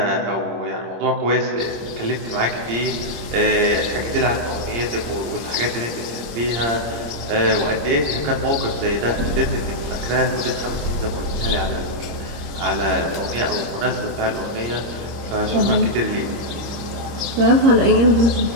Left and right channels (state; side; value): late; left; 25 ms